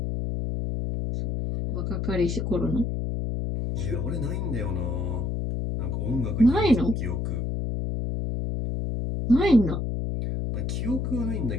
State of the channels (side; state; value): left; noise; hum, 1 dB below the sound